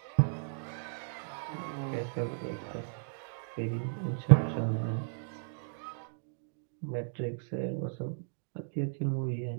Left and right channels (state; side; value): silent; left; digital silence